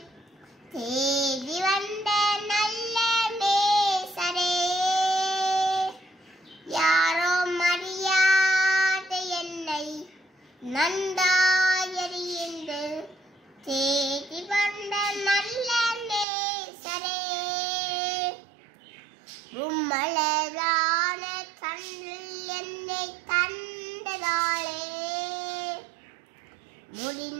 தேடி வந்த நல்ல நேசரே. யாரோ மரியாத என்னை நன்றாய் அறிந்து தேடி வந்த நல்ல நேசரே. உம்மலதான தந்தல் என்னை தந்ததாலே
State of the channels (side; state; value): left; drops out; at 16.2 s